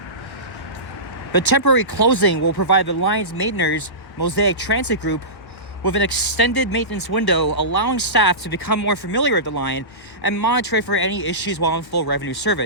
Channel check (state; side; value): late; right; 1.5 ms